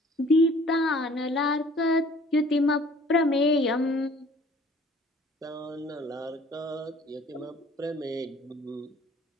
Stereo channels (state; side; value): normal; both; correlation 0.53